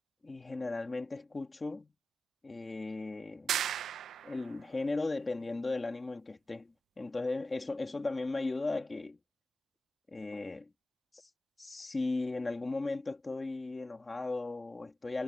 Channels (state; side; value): normal; both; correlation 0.93